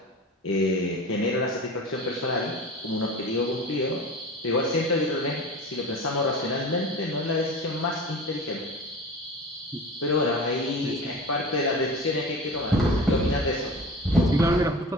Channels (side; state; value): both; normal; correlation 0.35